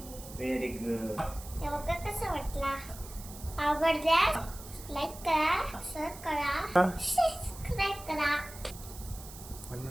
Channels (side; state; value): right; noise; hiss, 15 dB below the sound